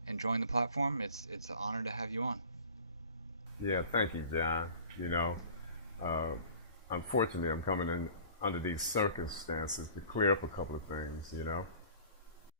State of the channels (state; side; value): inverted; both; correlation -0.45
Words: and join the platform. It's an honor to have you on. Yeah, thank you, John. Uh, unfortunately, I'm coming in under these circumstances to clear up a couple of things.